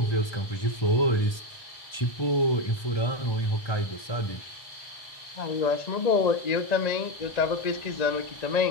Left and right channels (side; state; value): right; late; 1.3 ms